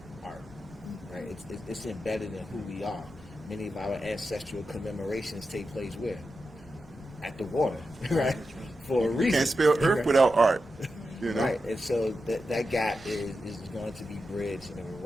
art, right? It's embedded in who we are. Many of our ancestral commemorations take place where? At the water, right? for a reason. Can't spell earth without art. You know? Right, and so that gap is going to be bridged in a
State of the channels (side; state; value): both; normal; correlation 0.90